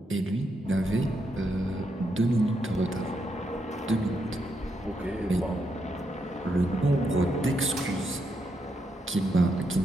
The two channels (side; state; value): both; normal; correlation 0.80